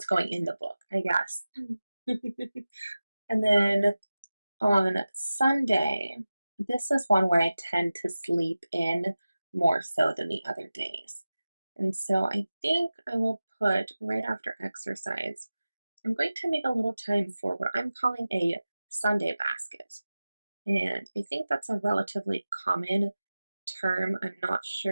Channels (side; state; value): both; inverted; correlation -0.96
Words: going in the book, I guess. And then on Sunday, this is one where I tend to sleep in more so than the other days. And so I think I will put right after exercise, I'm going to make a little time for what I'm calling a Sunday basket. And I think that's a relatively common term. I'm not